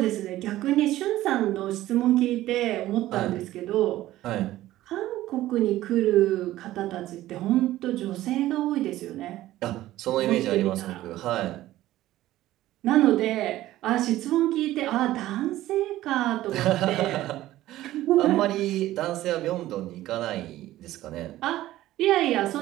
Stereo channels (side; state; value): left; quieter; 15.1 dB